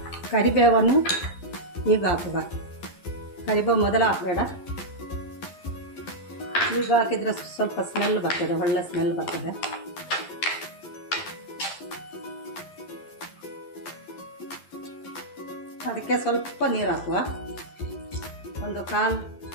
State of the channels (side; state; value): right; late; 11 ms